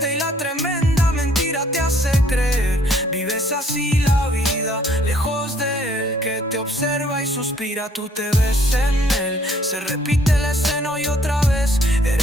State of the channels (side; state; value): both; normal; correlation 0.62